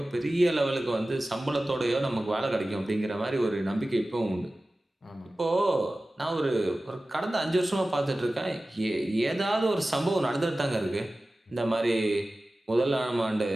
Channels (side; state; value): both; normal; correlation 0.96